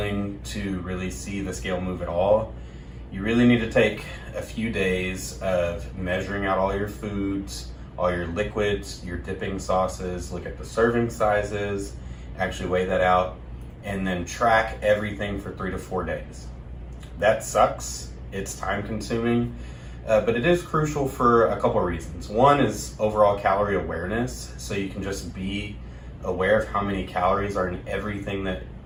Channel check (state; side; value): identical; both; correlation 1.00